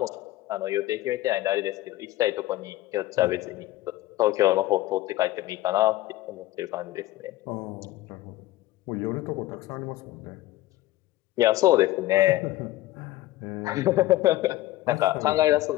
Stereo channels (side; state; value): right; quieter; 16.3 dB